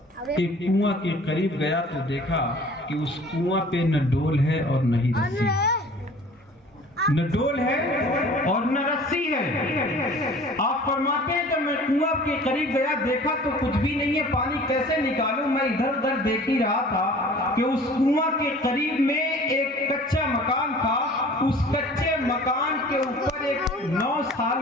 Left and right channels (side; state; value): both; normal; correlation 0.47